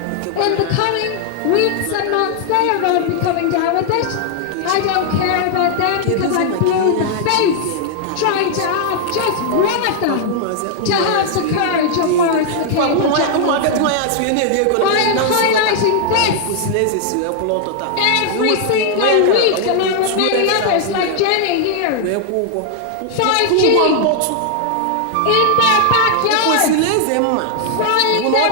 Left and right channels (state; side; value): different; both; correlation 0.00